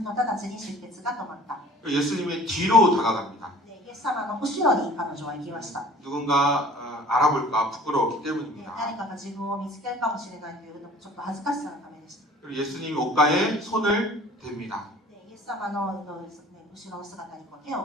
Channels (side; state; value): both; normal; correlation 0.48